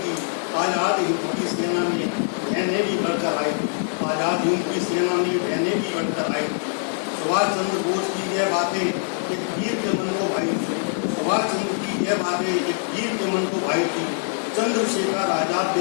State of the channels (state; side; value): silent; right; digital silence